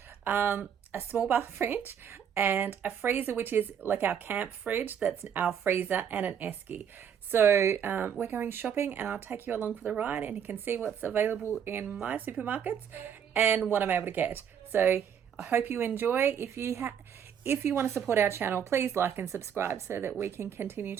a small bar fridge and a freezer, which is like our camp fridge. That's our freezer, and an esky. So we're going shopping and I'll take you along for the ride and you can see what's available in my supermarkets and what I'm able to get. So I hope you enjoy. If you want to support our channel, please like and subscribe so that we can continue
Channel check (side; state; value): left; quieter; 8.2 dB